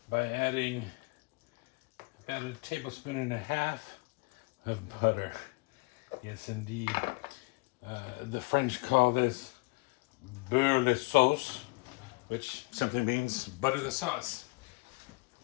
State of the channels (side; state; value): right; quieter; 27.2 dB